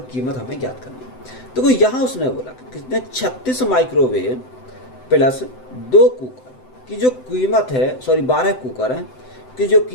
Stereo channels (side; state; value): right; late; 7.9 ms